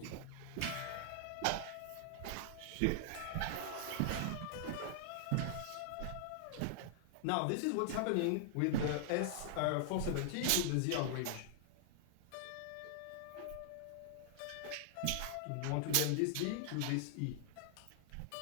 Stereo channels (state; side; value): different; both; correlation -0.01